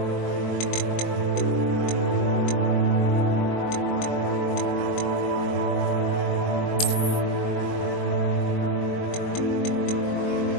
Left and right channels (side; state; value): right; late; 22 ms